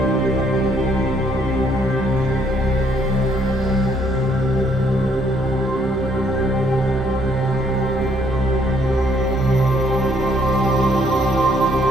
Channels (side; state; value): both; normal; correlation 0.67